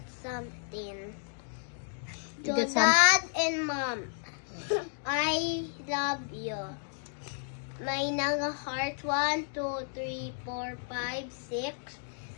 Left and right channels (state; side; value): silent; right; digital silence